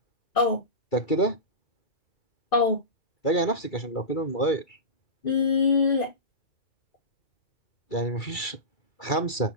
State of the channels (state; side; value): late; right; 2.3 ms